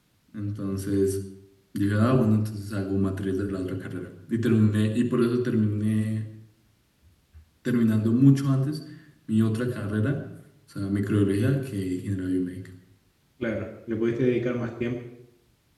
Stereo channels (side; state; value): both; identical; correlation 1.00